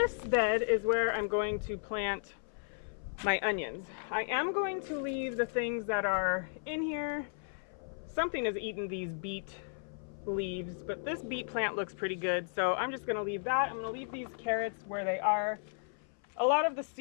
bed is where I'm going to plant my onions. I am going to leave the things that are in here. Something has eaten these beet leaves, but this beet plant looks pretty good, so I'm just going to leave that. I'm going to leave these carrots where they are. A lot of the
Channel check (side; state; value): right; silent; 55 dB below the other